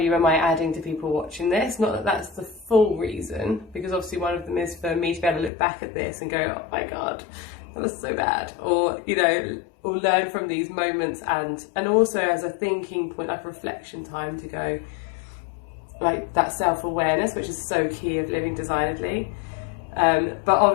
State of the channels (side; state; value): right; drops out; at 5.5 s